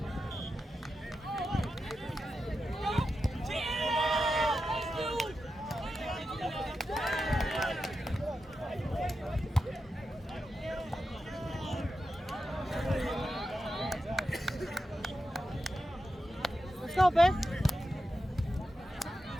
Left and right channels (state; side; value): normal; both; correlation 0.90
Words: Let's go, babe.